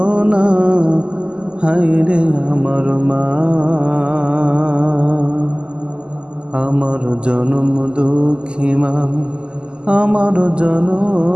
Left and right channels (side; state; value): left; late; 0.051 ms